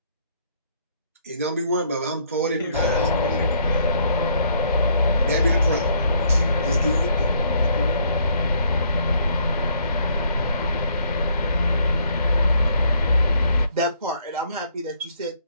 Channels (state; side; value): inverted; both; correlation -0.66